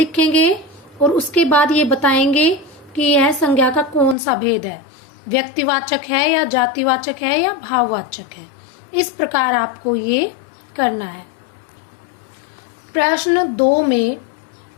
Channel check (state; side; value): drops out; right; at 4.2 s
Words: और उसके बाद ये बताएंगे कि यह संज्ञा का कौन सा भेद है, व्यक्तिवाचक है या जातिवाचक है या भाववाचक है। इस प्रकार आपको ये करना है। प्रश्न 2 में